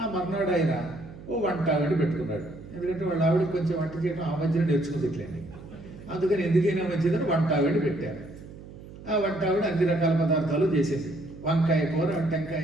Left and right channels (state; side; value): noise; right; hum, 16 dB below the sound